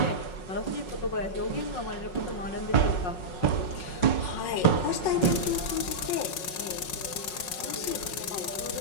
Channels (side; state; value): right; late; 5.5 ms